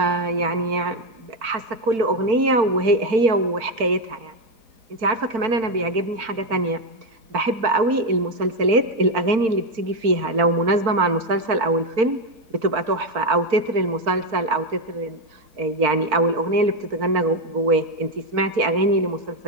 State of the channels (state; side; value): late; left; 4.4 ms